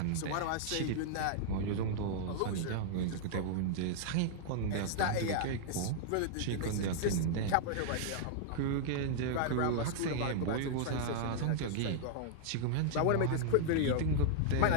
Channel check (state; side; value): different; both; correlation -0.01